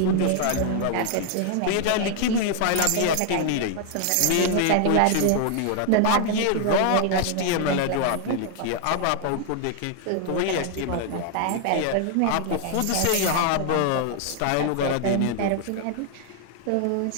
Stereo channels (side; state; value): both; different; correlation 0.00